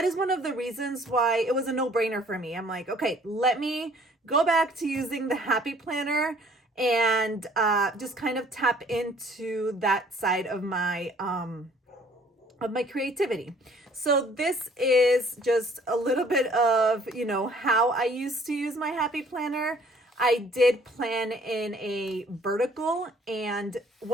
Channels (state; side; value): normal; both; correlation 0.57